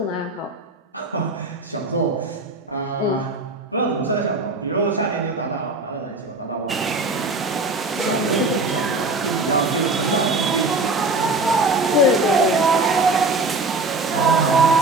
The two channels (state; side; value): quieter; left; 3.0 dB